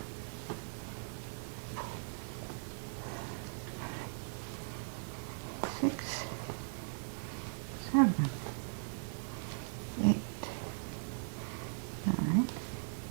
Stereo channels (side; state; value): left; silent; digital silence